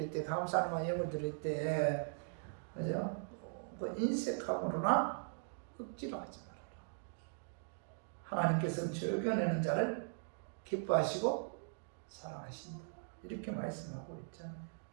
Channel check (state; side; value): silent; left; digital silence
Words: 때 감사하는 마음 예물 드릴 때 그죠? 그 인색함으로나 억지로 하지 말아라. 하나님께서는 즐겨내는 자를 기뻐하시고 사랑하신다. 이렇게 말씀하고 있잖아요.